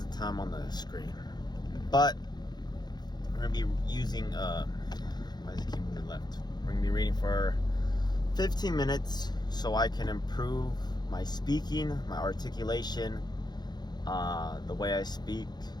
the time on the screen, but we're gonna be using why does it keep moving left? We're gonna be reading for 15 minutes so I can improve my speaking, my articulation, the way I speak,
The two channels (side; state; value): right; late; 0.20 ms